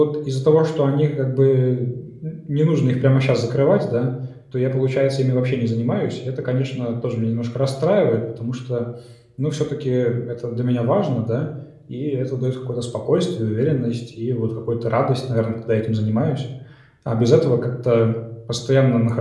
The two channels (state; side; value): identical; both; correlation 1.00